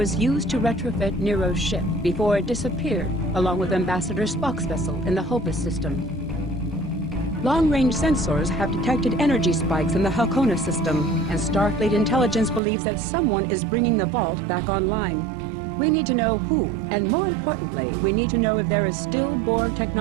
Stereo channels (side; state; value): left; drops out; at 12.6 s